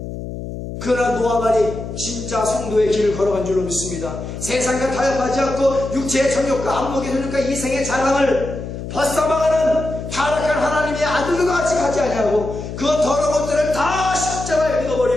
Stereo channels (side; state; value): left; noise; hum, 8 dB below the sound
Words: 그러나 노아만이 진짜 성도의 길을 걸어간 줄로 믿습니다. 세상과 타협하지 않고 육체의 정욕과 안목의 정욕과 이생의 자랑을 벗어나가는 타락한 하나님의 아들들과 같이 가지 아니하고 그 더러운 것들을 다 십자가에